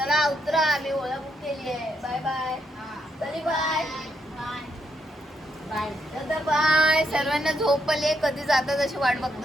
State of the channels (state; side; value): normal; both; correlation 0.78